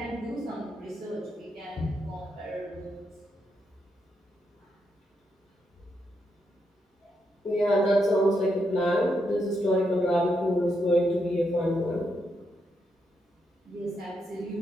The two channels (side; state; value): both; normal; correlation 0.81